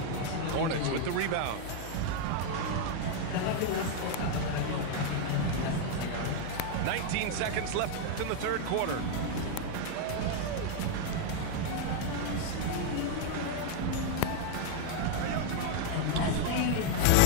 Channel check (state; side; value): different; both; correlation 0.00